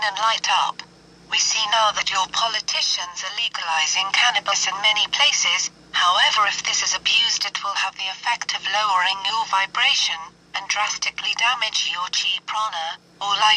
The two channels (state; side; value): identical; both; correlation 1.00